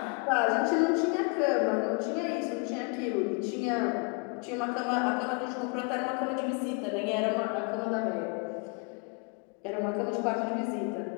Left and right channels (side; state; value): right; quieter; 34.2 dB